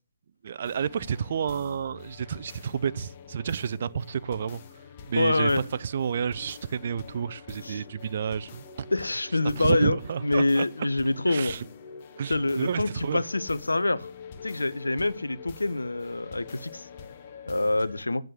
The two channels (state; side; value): inverted; both; correlation -0.87